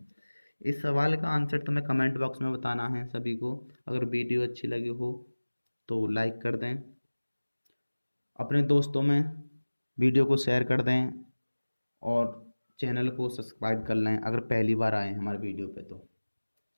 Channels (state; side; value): inverted; both; correlation -1.00